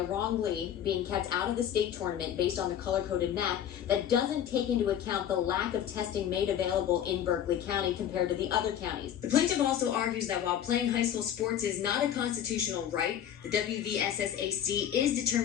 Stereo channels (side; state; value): right; quieter; 10.0 dB